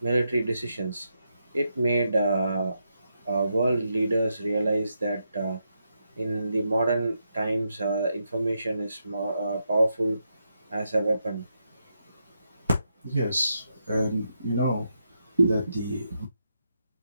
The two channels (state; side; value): inverted; both; correlation -0.83